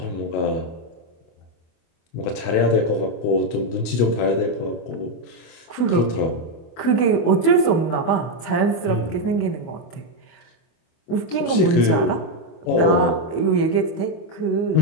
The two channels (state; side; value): late; right; 25 ms